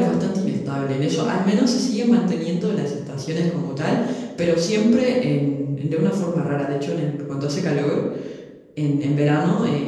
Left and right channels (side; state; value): both; identical; correlation 1.00